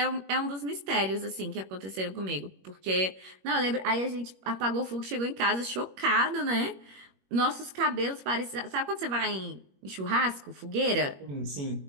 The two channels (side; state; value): left; late; 21 ms